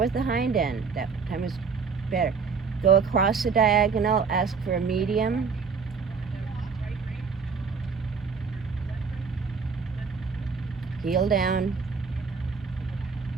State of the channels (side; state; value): left; quieter; 5.4 dB